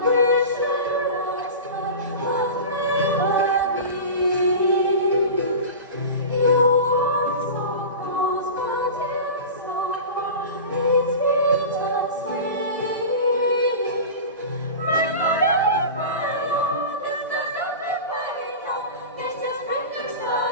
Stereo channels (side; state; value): both; inverted; correlation -0.31